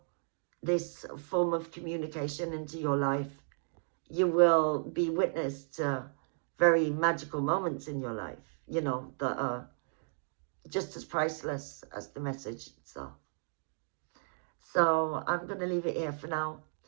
this form of communication into your life, you will be witness to very magical moments in your life, you know, that are just as priceless as the message itself. So I'm going to leave it here for now.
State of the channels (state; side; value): silent; left; digital silence